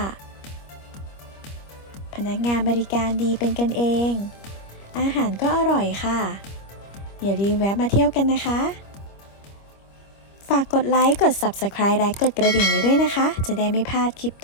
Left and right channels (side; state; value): right; late; 25 ms